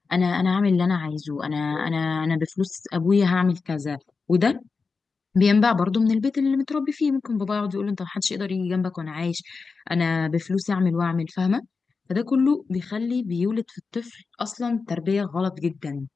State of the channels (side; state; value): right; quieter; 4.6 dB